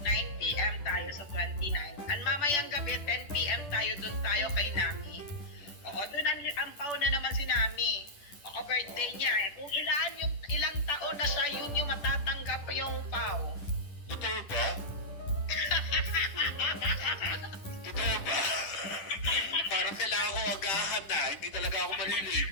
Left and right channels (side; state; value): right; late; 10 ms